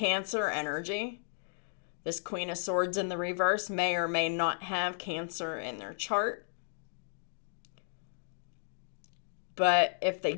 energy. This Queen of Swords in the reverse may or may not have Cancer in their chart. But if they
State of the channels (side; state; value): right; silent; digital silence